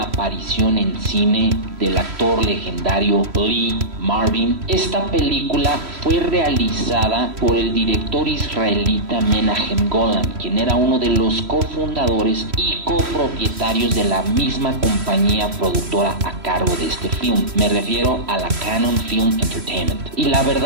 aparición en cine del actor legendario Lee Marvin. Esta película fue realizada por el director israelita Menahem Golan, quien era uno de los cofundadores y copropietarios de la misma compañía productora a cargo de este film. Me refiero a la Cannon Film Entertainment. Y la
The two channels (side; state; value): left; late; 3.1 ms